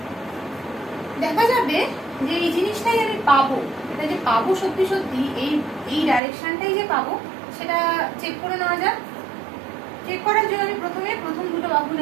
দেখা যাবে যে এই জিনিসটাই আমি পাবো, এটা যে পাবো সত্যি সত্যি এই ডাইরেকশনটাই যে পাবো, সেটা চেক করে নেওয়া যাক। চেক করার জন্য আমি প্রথম দুটো বাহু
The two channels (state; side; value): drops out; left; at 6.2 s